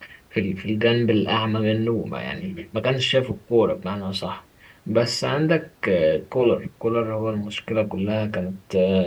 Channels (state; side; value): identical; both; correlation 1.00